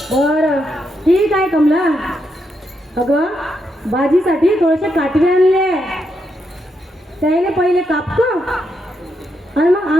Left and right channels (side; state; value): both; normal; correlation 0.81